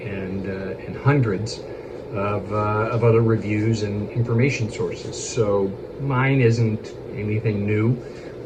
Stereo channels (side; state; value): both; identical; correlation 1.00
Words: and hundreds of other reviews and information sources. So mine isn't anything new